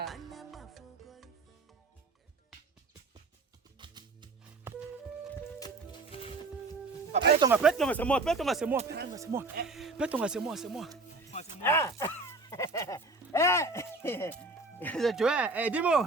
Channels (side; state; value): left; quieter; 3.4 dB